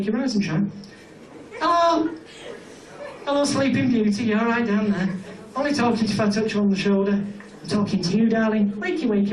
rise and shine. Hello! Hello, Sleeping Beauty, you alright down there? Only talking to you if I touch you on the shoulder. I'm talking to you, darling. Wakey,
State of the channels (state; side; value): identical; both; correlation 1.00